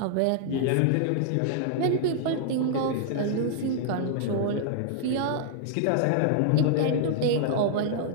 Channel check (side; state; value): both; different; correlation -0.01